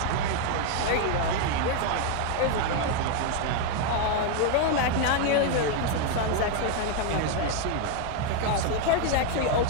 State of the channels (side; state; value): both; different; correlation 0.01